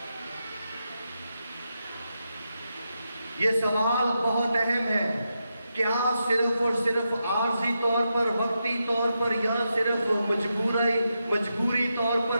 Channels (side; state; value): both; inverted; correlation -0.86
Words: یہ سوال بہت اہم ہے۔ کیا صرف اور صرف عارضی طور پر، وقتی طور پر، یا صرف مجبوری طور